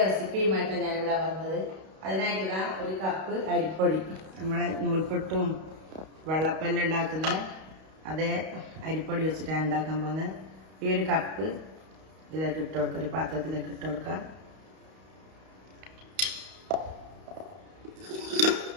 റെസിപ്പിയുമായിട്ടാണ് ഞാനിവിടെ വന്നത്. അതിനായിട്ട് ഒരു കപ്പ് അരിപ്പൊടി, നമ്മളെ നൂൽപുട്ടും വെള്ളപ്പെല്ലാം ഉണ്ടാക്കുന്ന അതേ അരിപ്പൊടി വെച്ചിട്ടാണ് ഉണ്ടാക്കാൻ പോകുന്നത്. ഈ ഒരു കപ്പ് ഇതിലേക്ക് ഇട്ട് കൊടുക്കുക, ഒരു പാത്രത്തിലേക്ക് ഇട്ട് കൊടുക്കുക.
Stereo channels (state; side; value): late; left; 32 ms